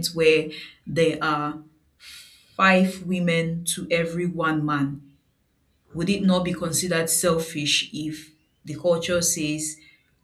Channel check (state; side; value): identical; both; correlation 1.00